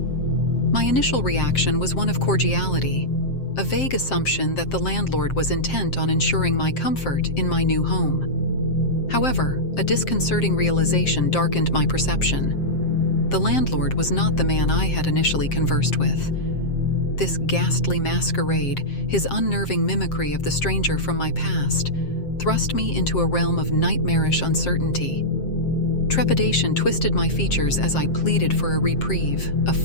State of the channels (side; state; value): right; late; 7.6 ms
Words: My initial reaction was one of cordiality, a vague assumption that the landlord was intent on ensuring my comfort in my new home. However, a disconcerting realization darkened my perception. The landlord was not the man I had initially conversed with. This ghastly masquerade, his unnerving mimicry of the stranger from my past, thrust me into a realm of nightmarish uncertainty. Trepidation twisted my features as I pleaded for a reprieve, a